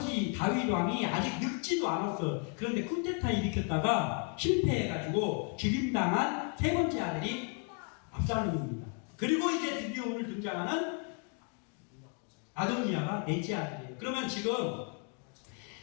다윗 왕이 아직 늙지도 않았어요. 그런데 쿠데타 일으켰다가 실패해가지고 죽임당한 세 번째 아들이 압살롬입니다. 그리고 이제 드디어 오늘 등장하는 아도니아가 넷째 아들이에요. 그러면 지금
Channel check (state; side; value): quieter; right; 35.3 dB